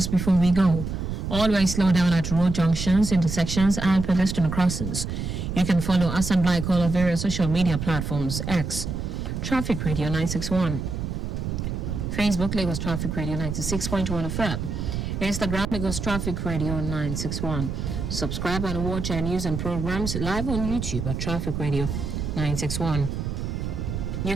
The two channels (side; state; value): right; noise; rumble, 4 dB below the sound